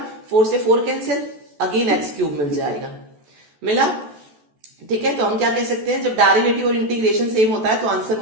4 से 4 कैंसिल, अगेन x क्यूब मिल जाएगा, मिला। ठीक है, तो हम क्या कह सकते हैं, जब डेरिवेटिव और इंटीग्रेशन सेम होता है तो आंसर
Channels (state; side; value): late; left; 14 ms